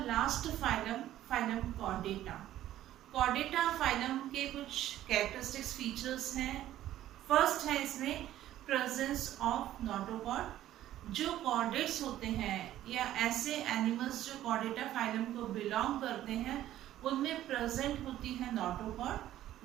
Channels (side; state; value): left; quieter; 13.1 dB